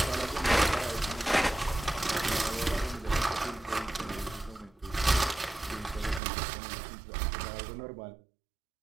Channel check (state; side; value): drops out; left; at 6.2 s